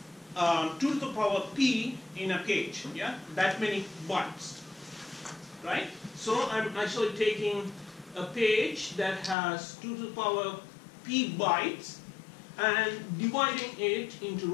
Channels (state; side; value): drops out; right; at 9.3 s